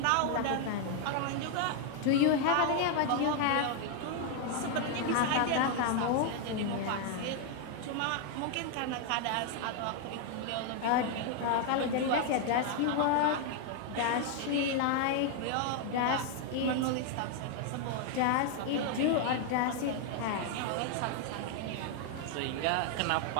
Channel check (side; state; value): both; different; correlation 0.00